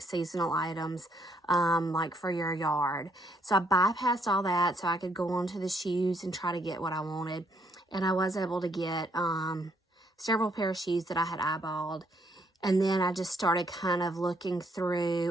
seasonal items like for your yard. So I bypassed all that so I could go on to the shoes and try to get what I wanted. And I was able to get several pair of shoes that I had eyeballed. And then I just started kind of looking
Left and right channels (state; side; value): normal; both; correlation 0.70